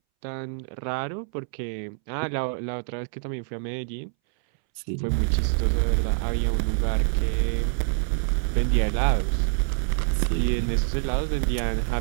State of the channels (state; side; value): silent; left; 61 dB below the other